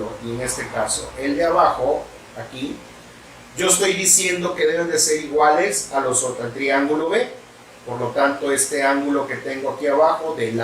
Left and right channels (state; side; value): identical; both; correlation 1.00